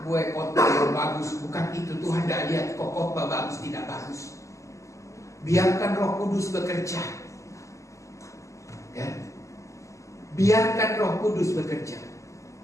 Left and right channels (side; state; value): right; late; 0.15 ms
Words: gue khotbah yang bagus. Bukan itu, Tuhan tidak lihat kok khotbah bagus tidak bagus. Biarkan Roh Kudus bekerja. Ya. Biarkan Roh Kudus bekerja.